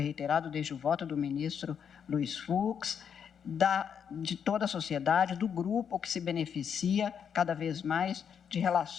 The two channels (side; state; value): right; quieter; 7.6 dB